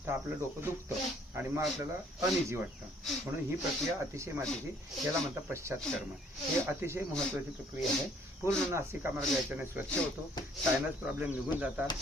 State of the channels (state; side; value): normal; both; correlation 0.61